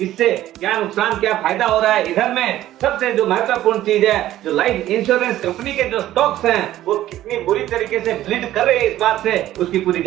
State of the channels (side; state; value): left; quieter; 13.8 dB